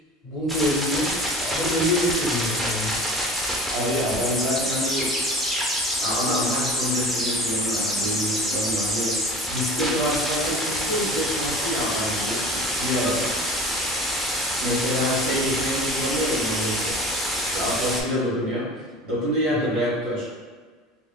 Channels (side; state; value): both; normal; correlation 0.41